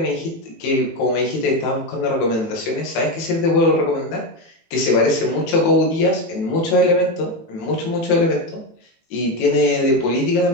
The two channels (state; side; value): late; right; 18 ms